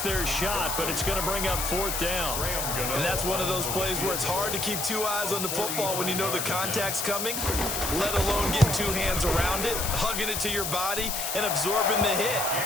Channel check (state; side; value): noise; left; hiss, 2 dB below the sound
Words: their shot, but it's going to bring up 4th down. And that's one of those plays where it's hard to keep 2 eyes on the football when you know the contact's coming, let alone getting 2 hands around it, hugging it to your body, and absorbing the hit.